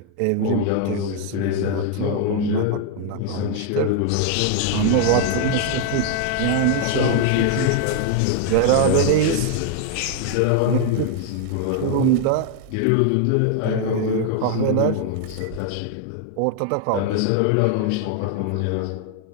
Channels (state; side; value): different; both; correlation 0.00